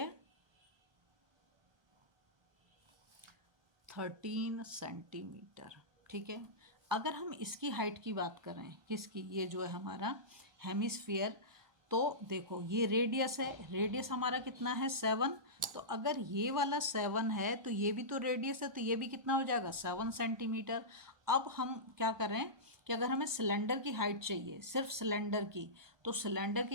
13 सेंटीमीटर। ठीक है, अगर हम इसकी हाइट की बात करें, किसकी, ये जो है हमारा हेमिस्फीयर, तो देखो ये रेडियस है, रेडियस हमारा कितना है 7। तो अगर ये वाला 7 है तो ये भी तो रेडियस है, तो ये भी कितना हो जाएगा 7 सेंटीमीटर। अब हम क्या करें कि अगर हमें सिलेंडर की हाइट चाहिए, सिर्फ सिलेंडर की, तो सिलेंडर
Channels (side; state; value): left; late; 1.2 ms